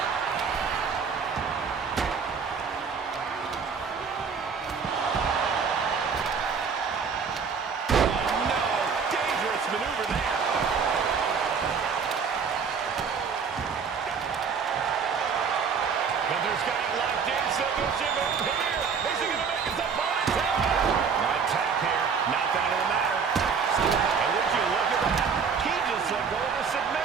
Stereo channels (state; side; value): quieter; left; 6.0 dB